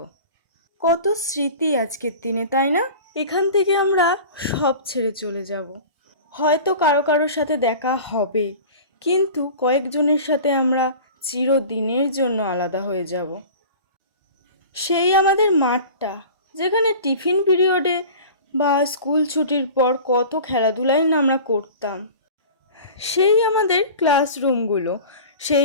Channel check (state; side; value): inverted; both; correlation -0.38